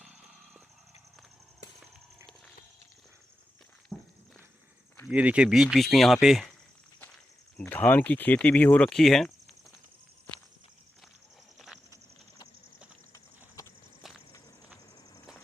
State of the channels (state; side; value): normal; both; correlation 0.90